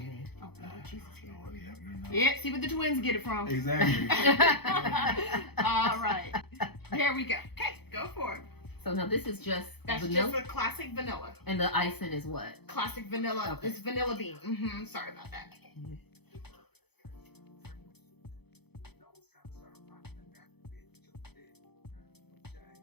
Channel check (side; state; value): right; late; 0.98 ms